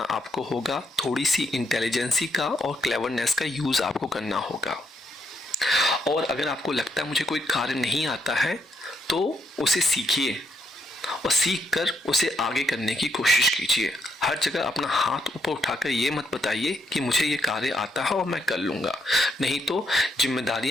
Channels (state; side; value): normal; both; correlation 0.77